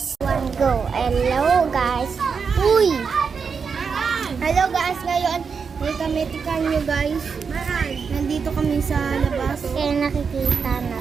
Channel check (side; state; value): left; quieter; 5.8 dB